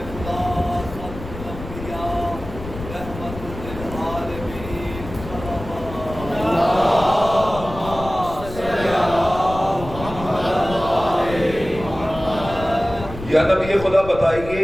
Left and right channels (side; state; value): left; noise; rumble, 11 dB below the sound